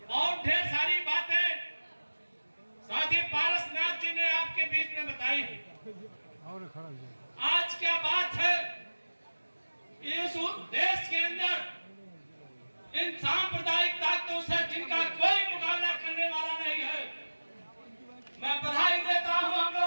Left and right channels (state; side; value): inverted; both; correlation -1.00